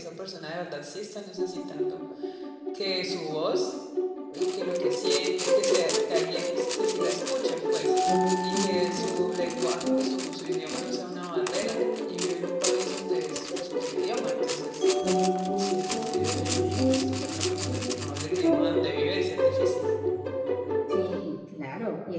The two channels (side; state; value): both; identical; correlation 1.00